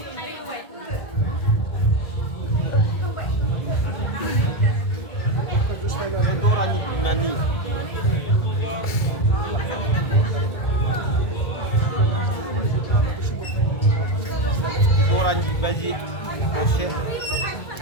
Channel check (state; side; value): late; right; 1.7 ms